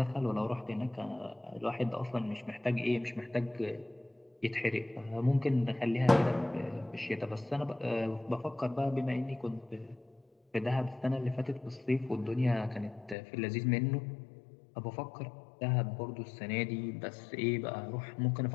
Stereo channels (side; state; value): right; drops out; at 13.2 s